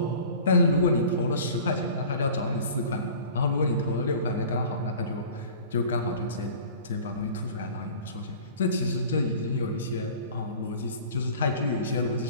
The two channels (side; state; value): both; inverted; correlation -0.43